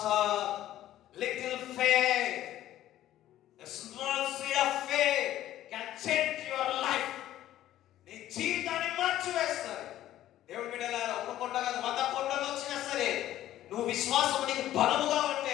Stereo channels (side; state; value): right; quieter; 13.3 dB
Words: little faith, a small seed of faith can change your life. నీ జీవితాన్ని మార్చివేస్తాడు. దేవుడి బిడ్డలారా, ఒక కొండ కాదు 100 కొండలు వచ్చినా సరే నువ్వు విశ్వాసం నీకు బలముగా